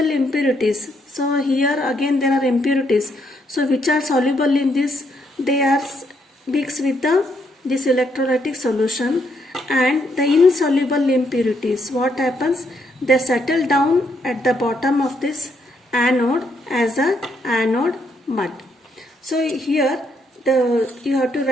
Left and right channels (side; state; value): both; normal; correlation 0.74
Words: impurities. So here again there are impurities. So which are soluble in this? They are mixed with this electrolytic solution, and the insoluble impurities, what happens? They settle down at the bottom of this anode as a anode mud. So here you have to